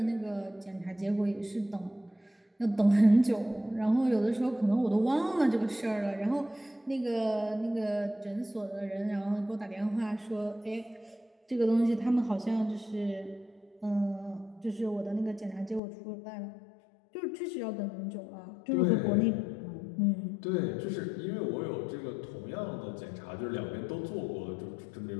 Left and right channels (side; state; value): right; drops out; at 15.8 s